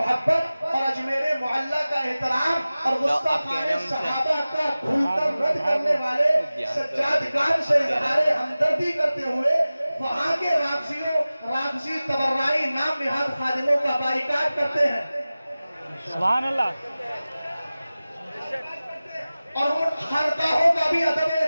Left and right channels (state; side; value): inverted; both; correlation -0.97